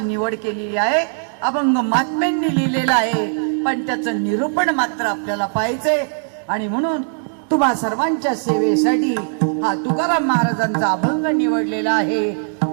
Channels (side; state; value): left; silent; 66 dB below the other